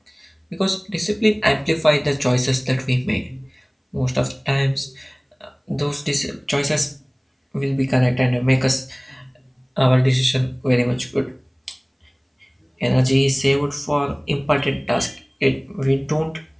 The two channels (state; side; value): identical; both; correlation 1.00